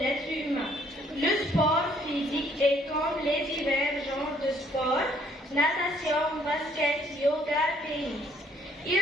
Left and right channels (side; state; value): both; normal; correlation 0.64